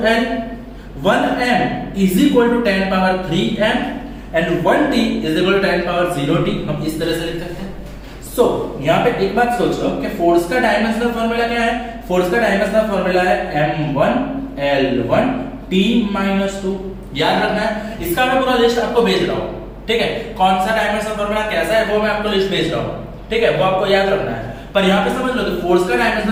1m is equal to 10 power 3m and 1t is equal to 10 power 0t. हम इस तरह से लिख सकते हैं. सो यहाँ पे एक बात सोच लो कि फोर्स का डायमेंशनल फॉर्मूला क्या है? फोर्स का डायमेंशनल फॉर्मूला है m1 L1 t - 2. याद रखना है. इसका मैं पूरा लिस्ट आपको भेज रहा हूँ, ठीक है? कौन सा डायमेंशनल फॉर्मूला कैसा है वो मैं आपको लिस्ट भेज रहा हूँ, ठीक है? वो आपको याद रखना है. पर यहाँ पे समझ लो कि फोर्स का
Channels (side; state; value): both; identical; correlation 1.00